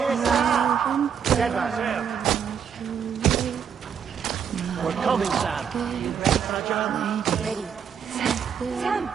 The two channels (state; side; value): quieter; left; 7.6 dB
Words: Sam. Stand by, Sam. We're coming, Sam. You ready for our job? Ready. Sam,